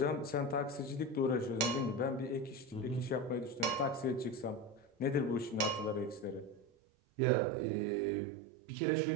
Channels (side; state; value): left; drops out; at 6.7 s